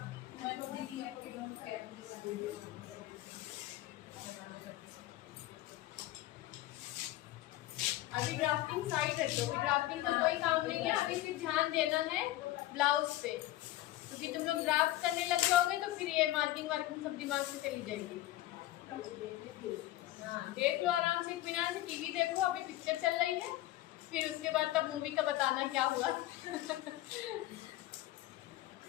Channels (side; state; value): right; quieter; 15.6 dB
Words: मैं तो दीदी को अभी ड्राफ्टिंग साइड रख दो, अभी ड्राफ्टिंग का कोई काम नहीं है। अभी सिर्फ ध्यान देना है ब्लाउज पे, क्योंकि तुम लोग ड्राफ्ट करने लग जाओगे तो फिर ये मार्किंग वार्किंग सब दिमाग से चली जाएगी। हाँ देख लो आराम से, इत्मीनान से टीवी देखो, अभी पिक्चर चल रही है, फिर उसके बाद तब मूवी का बताना क्या हुआ।